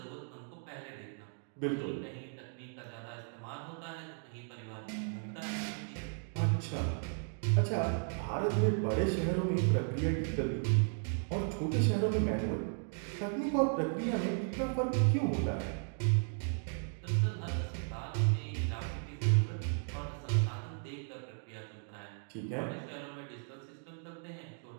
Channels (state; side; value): silent; left; 54 dB below the other